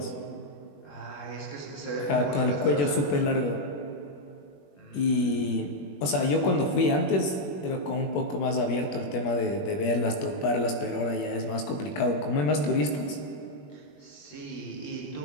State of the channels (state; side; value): late; right; 21 ms